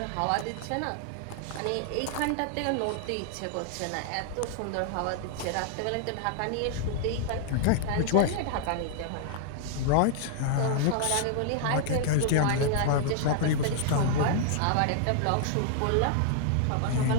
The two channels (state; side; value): different; both; correlation -0.01